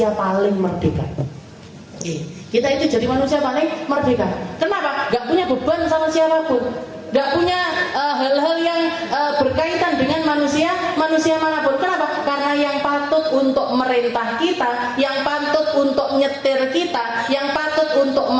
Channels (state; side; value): identical; both; correlation 1.00